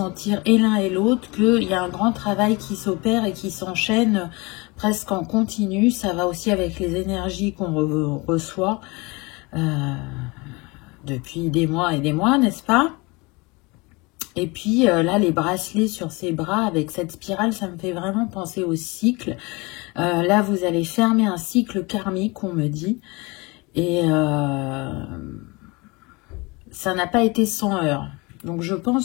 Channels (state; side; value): quieter; right; 26.0 dB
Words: et l'un et l'autre qu'il y a un grand travail qui s'opère et qui s'enchaîne presque en continu. Ça va aussi avec les énergies qu'on reçoit depuis des mois et des mois, n'est-ce pas? Et puis là, les bracelets sur ses bras avec cette spirale, ça me fait vraiment penser au cycle. Là, vous allez fermer un cycle karmique, on me dit. Et ça n'a pas été sans heurts. Donc, je